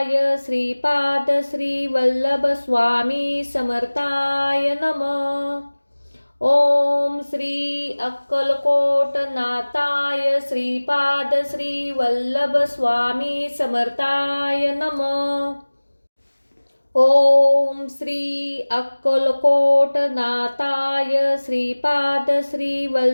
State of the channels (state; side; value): inverted; both; correlation -1.00